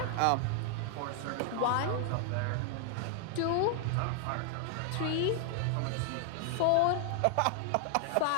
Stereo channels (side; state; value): both; different; correlation 0.00